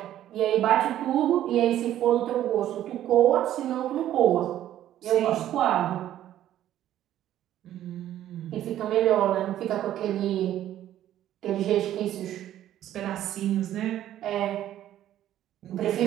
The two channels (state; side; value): quieter; left; 12.2 dB